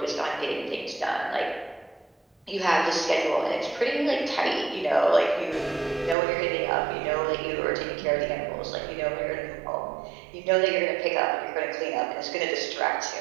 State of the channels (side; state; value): left; drops out; at 6.2 s